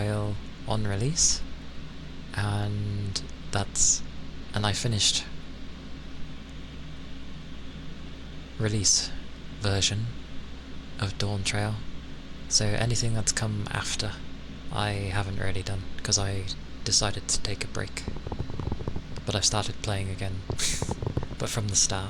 on release, and I finished release version of Dawn Trail, so anything that's come after I haven't really done, because I decided to take a break. But I've started playing again, but from the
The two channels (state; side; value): identical; both; correlation 1.00